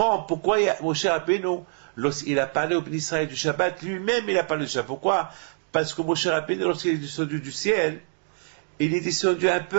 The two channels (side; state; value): left; silent; 62 dB below the other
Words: pourquoi Moshe Rabbeinu, lorsqu'il a parlé au peuple d'Israël du Shabbat, lui-même il a parlé du Shabbat. Pourquoi? Parce que Moshe Rabbeinu, lorsqu'il est descendu du ciel, il est descendu